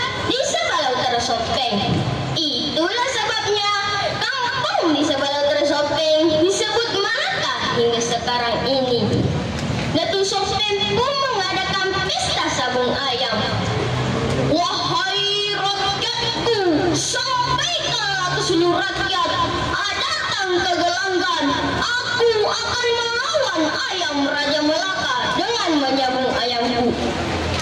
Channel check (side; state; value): both; identical; correlation 1.00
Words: di sebelah utara Sopeng. Itulah sebabnya kampung di sebelah utara Sopeng disebut Malaka hingga sekarang ini. Datuk Sopeng pun mengadakan pesta sabung ayam. Wahai rakyatku, sampaikanlah ke seluruh rakyat, datang ke gelanggan. Aku akan melawan ayam Raja Malaka dengan menyabung ayamku.